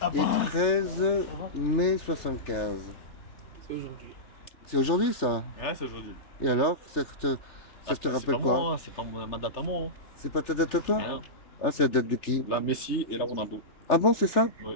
13 mai 75. C'est aujourd'hui. C'est aujourd'hui ça? Ouais, c'est aujourd'hui. Et alors, ça te rappelle quoi? C'est pas ma date à moi. C'est pas ta date à toi? Hein. Ah, c'est la date de qui? La Messi et la Ronaldo. Ah bon, c'est ça?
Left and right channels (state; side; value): late; right; 3.4 ms